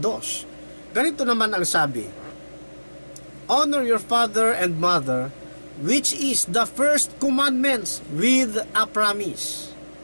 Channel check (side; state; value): both; inverted; correlation -1.00